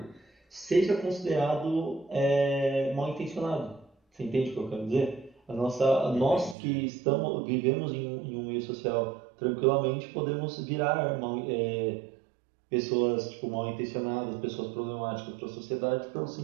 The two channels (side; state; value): left; drops out; at 6.6 s